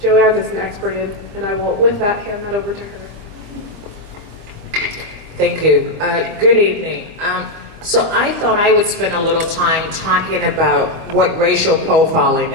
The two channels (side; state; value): left; late; 25 ms